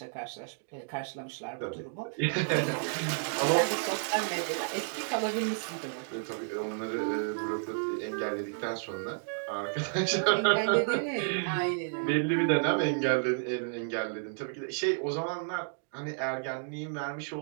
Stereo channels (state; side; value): silent; left; digital silence